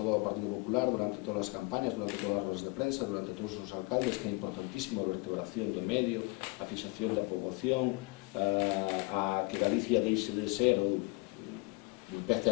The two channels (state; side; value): quieter; right; 26.9 dB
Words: o Partido Popular durante todas as campañas, durante todas as rodas de prensa, durante todos os alcaldes, que é importantísimo a vertebración do medio, a fixación da poboación, a que Galicia deixe de ser ou empece